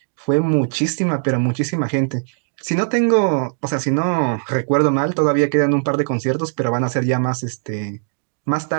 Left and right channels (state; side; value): silent; left; digital silence